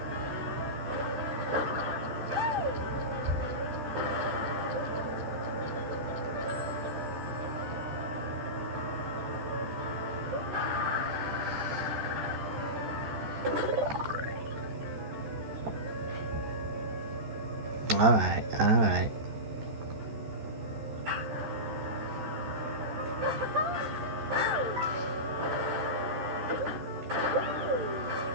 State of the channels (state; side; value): late; left; 13 ms